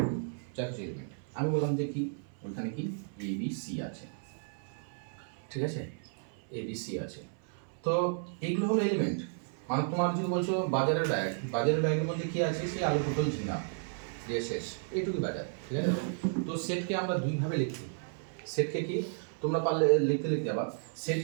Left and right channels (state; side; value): silent; left; 56 dB below the other